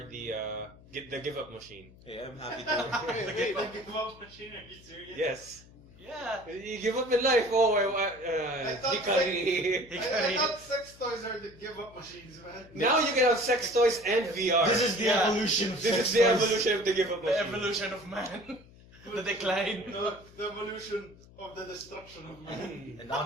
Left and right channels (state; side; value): noise; left; hum, 23 dB below the sound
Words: the give up machine. Hey, I'm happy to. Wait, the give up machine? Are you serious? Yes, Yeah. you give up in life. Oh, I thought Hikari. I thought sex toys are the give up machines, man. Now you can have sex toys and VR. This is the Yeah. evolution. Of This sex is the toys. evolution of the give up The machine. evolution of man. The decline. The evolution of the destruction of man. And